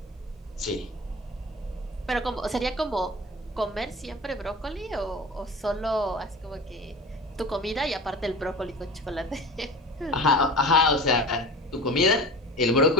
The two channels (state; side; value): normal; both; correlation 0.36